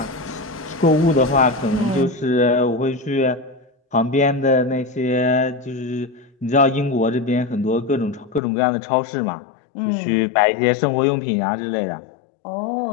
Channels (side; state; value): right; drops out; at 8.4 s